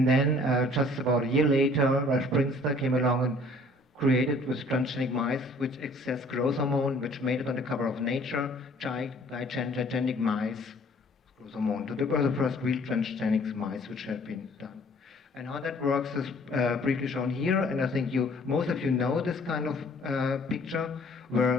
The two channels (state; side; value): normal; both; correlation 0.55